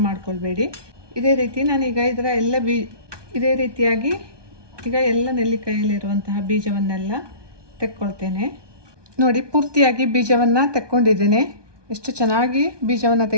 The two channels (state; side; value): late; left; 1.2 ms